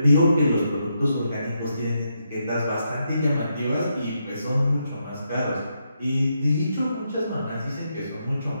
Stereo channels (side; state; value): both; inverted; correlation -0.81